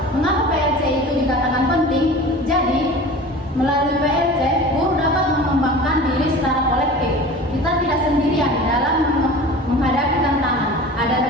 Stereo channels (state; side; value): normal; both; correlation 0.38